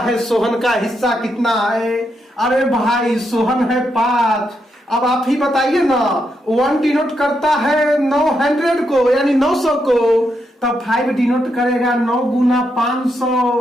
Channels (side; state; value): both; normal; correlation 0.81